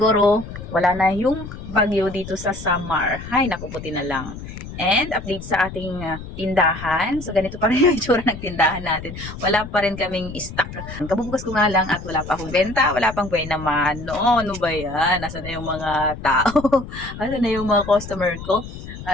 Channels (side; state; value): left; noise; rumble, 11 dB below the sound